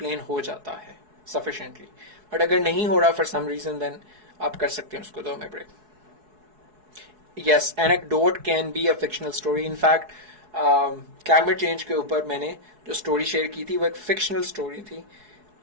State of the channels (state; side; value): late; left; 4.7 ms